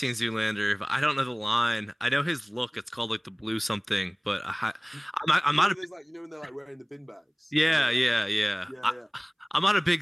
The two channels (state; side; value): identical; both; correlation 1.00